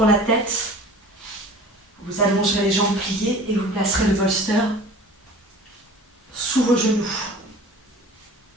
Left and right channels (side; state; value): both; normal; correlation 0.42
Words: la tête. Vous allongerez les jambes pliées et vous placerez le bolster sous vos genoux.